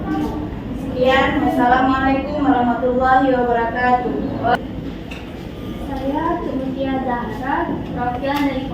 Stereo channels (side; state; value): both; identical; correlation 1.00